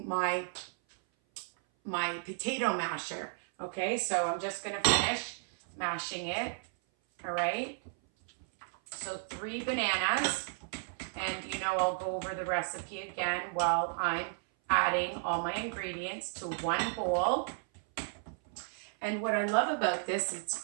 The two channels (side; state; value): left; silent; 55 dB below the other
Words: my potato masher, okay? So I'm just gonna finish mashing it, all right? So 3 bananas, and you know I'll go over the recipe again while I'm adding all my ingredients to one bowl. And what I love about this,